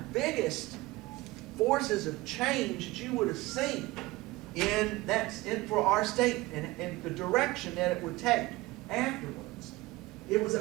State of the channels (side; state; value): left; quieter; 20.1 dB